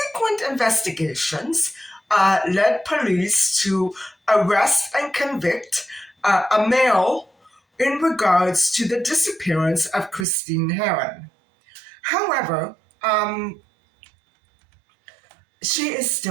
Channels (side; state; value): left; drops out; at 10.2 s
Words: investigations led police to arrest and convict a male in regards to the disappearance of Christine Harron. However, she is